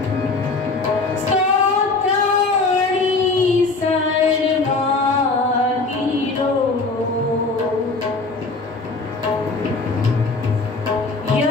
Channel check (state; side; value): quieter; right; 3.7 dB